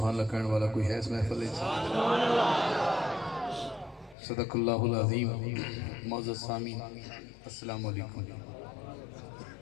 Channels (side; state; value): right; drops out; at 4.2 s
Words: अल्लाह कहने वाला कोई है इस महफिल में? सदक़ल्लाहुल अज़ीम। मौजूद सामीन अस्सलाम वालेकुम।